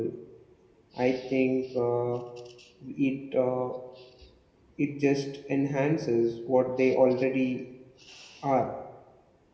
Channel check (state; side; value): identical; both; correlation 1.00